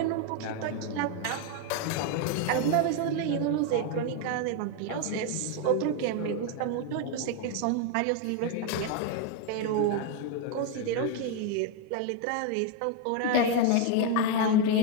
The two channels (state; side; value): different; both; correlation 0.01